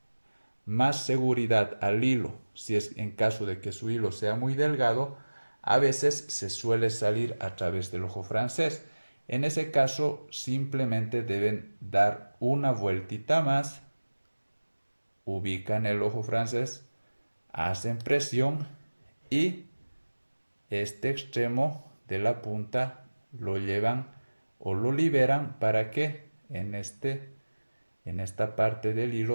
seguridad al hilo, si es en caso de que su hilo sea muy delgado, a veces se suele salir a través del ojo francés. En ese caso, simplemente deben dar una vueltita más, ubican el ojo francés, hacen presión y este extremo de la punta lo llevan o lo liberan para que en esta parte del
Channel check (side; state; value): both; inverted; correlation -1.00